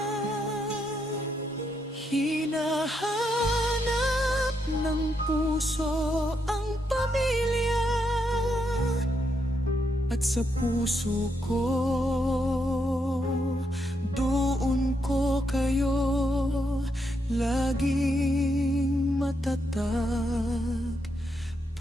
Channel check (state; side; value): normal; both; correlation 0.80